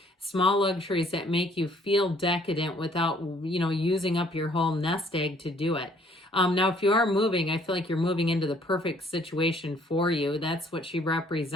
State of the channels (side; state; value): both; normal; correlation 0.61